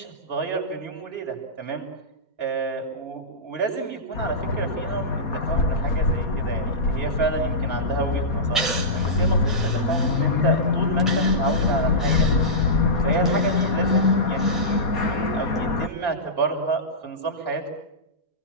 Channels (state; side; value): normal; both; correlation -0.17